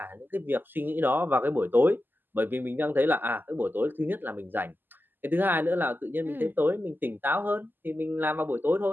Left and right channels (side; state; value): left; late; 0.091 ms